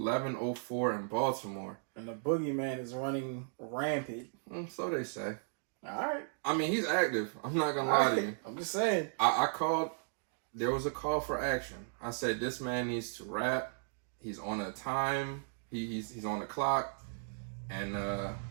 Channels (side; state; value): left; silent; digital silence